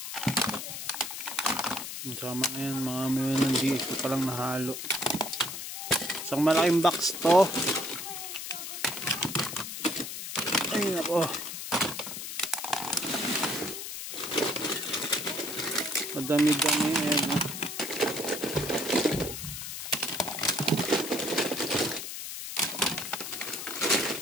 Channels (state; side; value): noise; left; hiss, 7 dB below the sound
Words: Sama na yan, mga may nandito palang nahalo. Isang malaking box to. Ay nako, madami-dami yan.